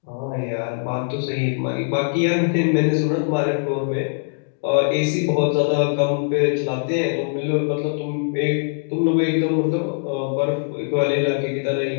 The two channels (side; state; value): right; silent; digital silence